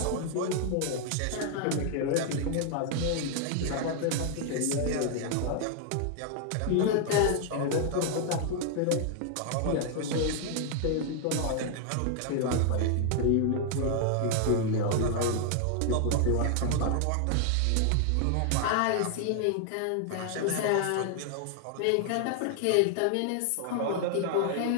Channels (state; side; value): different; both; correlation 0.00